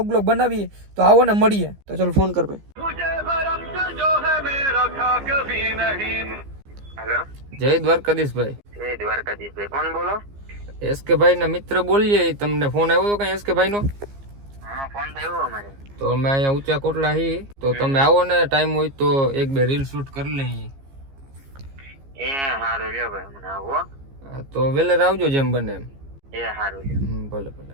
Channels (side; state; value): left; late; 15 ms